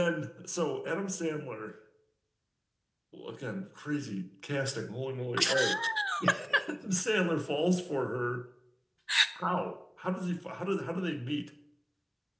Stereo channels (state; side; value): identical; both; correlation 1.00